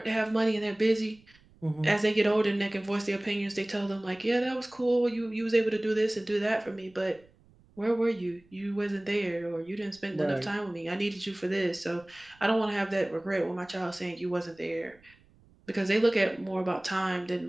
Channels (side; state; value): right; noise; rumble, 29 dB below the sound